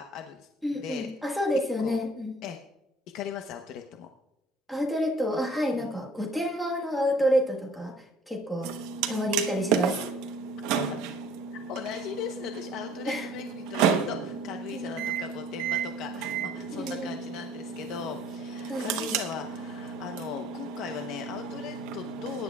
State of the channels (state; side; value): normal; both; correlation 0.53